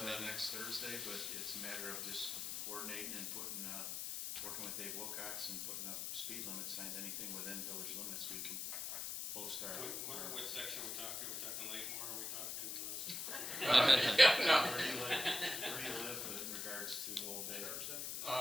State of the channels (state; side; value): noise; left; hiss, 4 dB below the sound